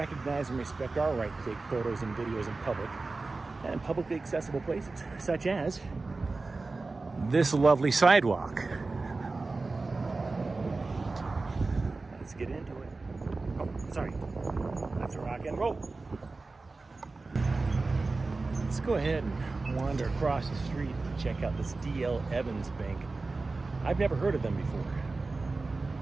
and respect our right to take photos and videos in public and in publicly accessible places, such as this lovely sidewalk. Let's get into it. Oh, sorry. That's a rock and roll. Let's go ahead and wander across the street and check out this D.L. Evans Bank. I've never heard of them before.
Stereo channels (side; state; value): left; quieter; 3.6 dB